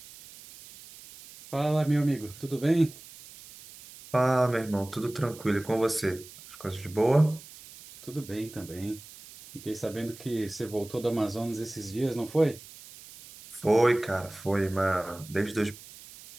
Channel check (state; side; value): noise; right; hiss, 18 dB below the sound